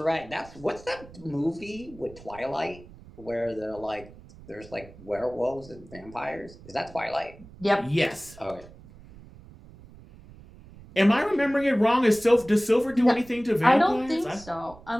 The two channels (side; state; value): right; noise; rumble, 20 dB below the sound